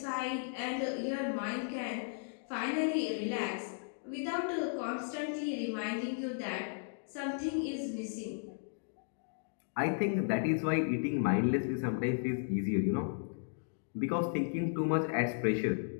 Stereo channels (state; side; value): silent; right; digital silence